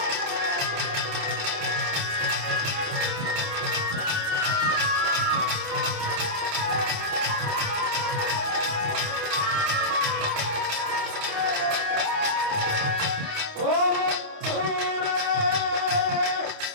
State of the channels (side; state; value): left; late; 28 ms